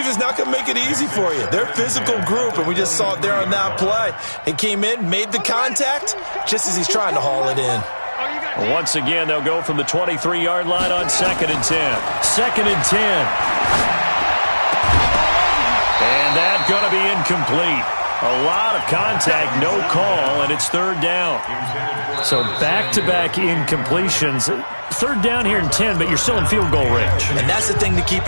not going to make it easy for you. They're a physical group, and we just saw it there on that play. He came in, made the contact, just as he's trying to haul it in. Once again, they'll go from the 23-yard line on 2nd and 10. 2nd and 10. And that's going to be incomplete. A lot of contact, no call, and it's 3rd down. So back-to-back incompletions. 3rd down here and 10, but you're still in field goal range. And that's the thing to keep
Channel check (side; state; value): both; inverted; correlation -1.00